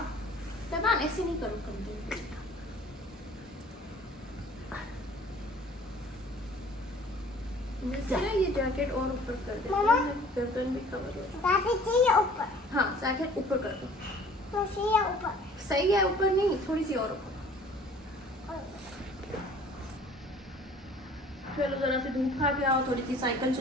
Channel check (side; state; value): both; normal; correlation 0.51